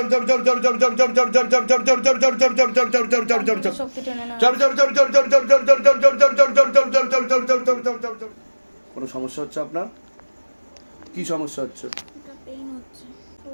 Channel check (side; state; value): both; inverted; correlation -1.00